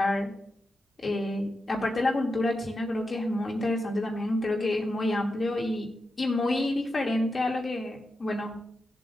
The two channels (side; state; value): both; normal; correlation 0.89